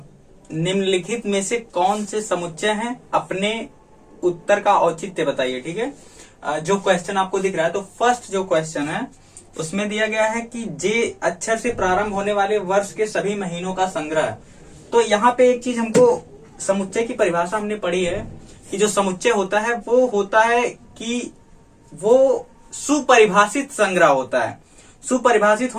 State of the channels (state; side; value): identical; both; correlation 1.00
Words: निम्नलिखित में से कौन से समुच्चय हैं, अपने उत्तर का औचित्य बताइए। ठीक है, जो क्वेश्चन आपको दिख रहा है, तो फर्स्ट जो क्वेश्चन है उसमें दिया गया है कि जे अक्षर से प्रारंभ होने वाले वर्ष के सभी महीनों का संग्रह। तो यहाँ पे एक चीज हमको समुच्चय की परिभाषा हमने पढ़ी है कि जो समुच्चय होता है वो होता है कि वो सुपरिभाषित संग्रह होता है। सुपरिभाषित